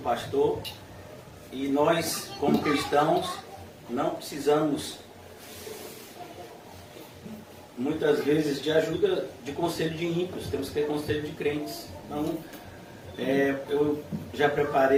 E nós, como cristãos, não precisamos, muitas vezes, de ajuda de conselho de ímpios. Temos que ter conselho de crentes. Então, eu já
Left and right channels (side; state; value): both; identical; correlation 1.00